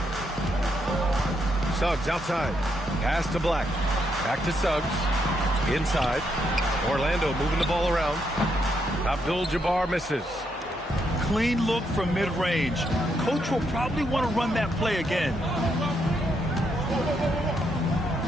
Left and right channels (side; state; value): both; normal; correlation 0.78